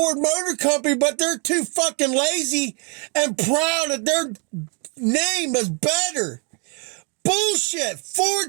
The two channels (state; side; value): quieter; left; 36.5 dB